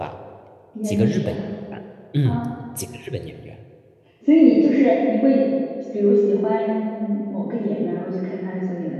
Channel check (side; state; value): both; identical; correlation 1.00